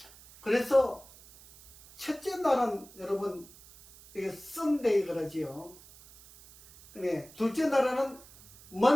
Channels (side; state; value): right; noise; hiss, 22 dB below the sound